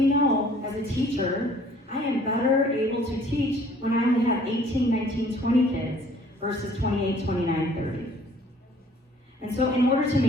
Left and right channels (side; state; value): both; normal; correlation 0.56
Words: know as a teacher, I am better able to teach when I only have 18, 19, 20 kids versus 28, 29, 30. And so in order to